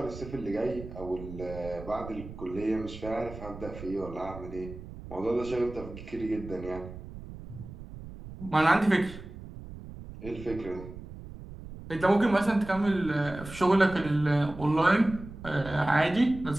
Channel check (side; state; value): right; noise; rumble, 13 dB below the sound